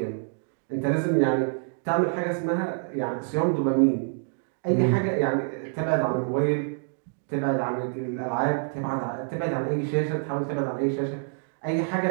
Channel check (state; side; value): silent; left; digital silence